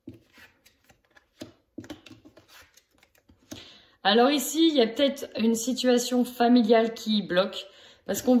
Alors ici, il y a peut-être une situation familiale qui bloque, parce qu'on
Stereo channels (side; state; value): both; identical; correlation 1.00